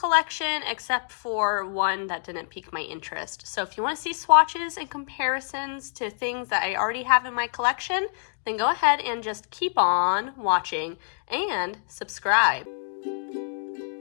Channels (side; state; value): right; silent; digital silence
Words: except for one that didn't pique my interest. So if you want to see swatches and comparisons to things that I already have in my collection, then go ahead and just keep on watching and subscribe.